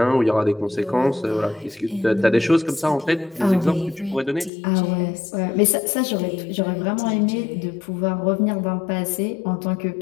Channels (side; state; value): right; drops out; at 4.5 s